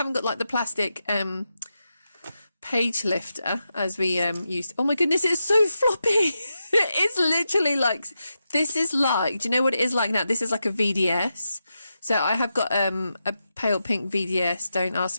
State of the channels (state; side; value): inverted; both; correlation -0.88